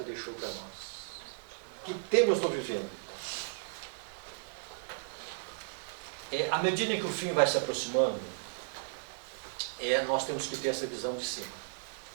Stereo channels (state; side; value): silent; left; digital silence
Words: deixou para nós? Que tempo nós estamos vivendo? À medida que o fim vai se aproximando, nós temos que ter essa visão de cima.